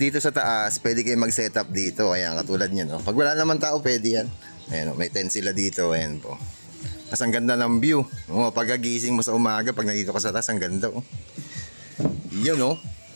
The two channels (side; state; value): both; inverted; correlation -1.00